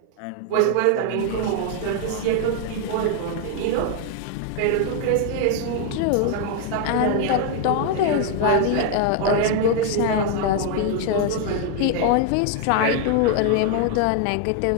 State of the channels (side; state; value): both; different; correlation 0.00